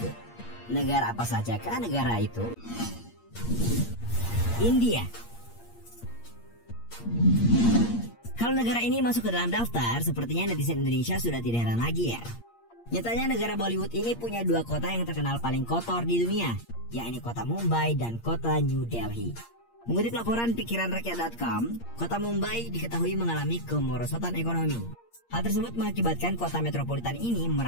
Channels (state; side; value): late; right; 8.6 ms